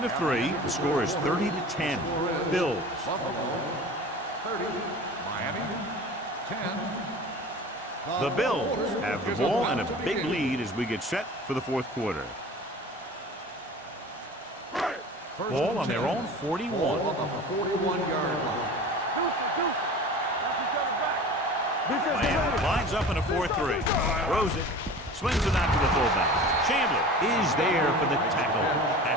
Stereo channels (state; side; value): normal; both; correlation 0.38